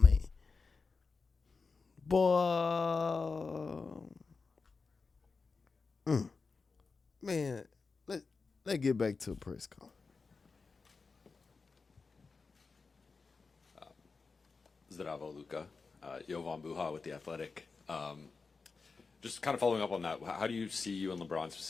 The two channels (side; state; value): right; quieter; 4.5 dB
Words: Boy. Man, let's get back to the press conference. Zdravo, Luka. Jovan Buha with The Athletic. Just kind of following up on that, how do you see you and LeBron